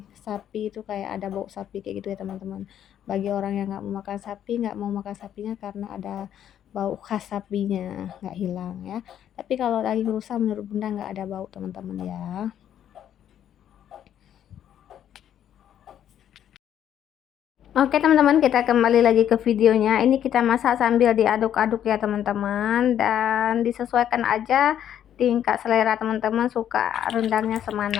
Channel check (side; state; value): right; quieter; 10.2 dB